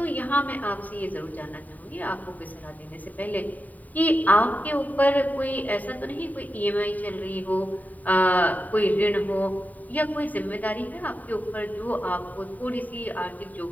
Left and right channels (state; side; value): late; right; 0.077 ms